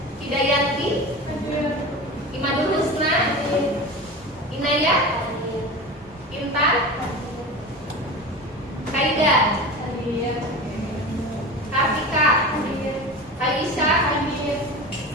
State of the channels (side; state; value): both; normal; correlation 0.30